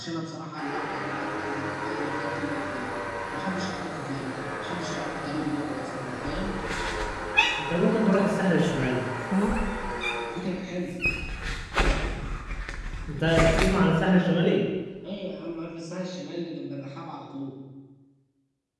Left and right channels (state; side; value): identical; both; correlation 1.00